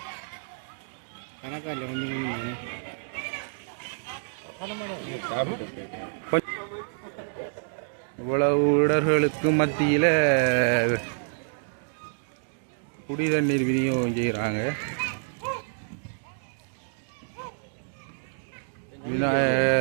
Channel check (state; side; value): silent; left; digital silence